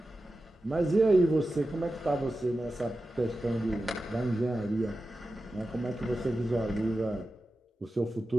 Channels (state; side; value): normal; both; correlation 0.93